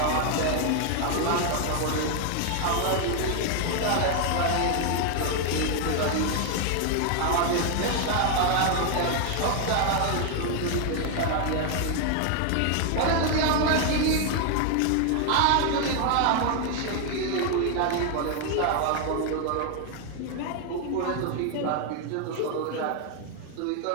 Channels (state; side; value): different; both; correlation 0.00